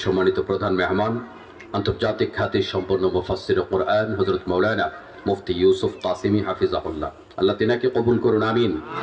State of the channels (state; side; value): identical; both; correlation 1.00